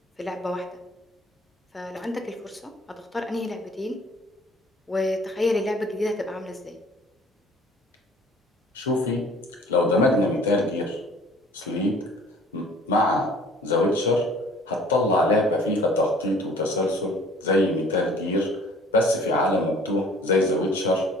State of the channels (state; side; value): normal; both; correlation 0.51